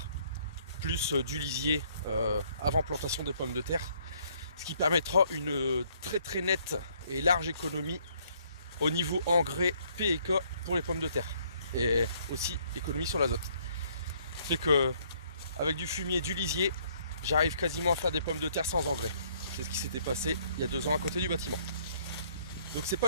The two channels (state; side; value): inverted; both; correlation -0.65